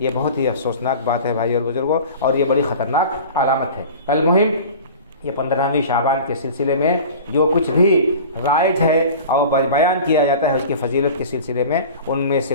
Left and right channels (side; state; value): both; inverted; correlation -0.39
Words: بہت ہی افسوسناک بات ہے بھائی اور بزرگوں، اور یہ بڑی خطرناک علامت ہے۔ المہم یہ 15ویں شعبان کے سلسلے میں جو کچھ بھی رائج ہے اور بیان کیا جاتا ہے اس کی فضیلت کے سلسلے میں، ان میں سے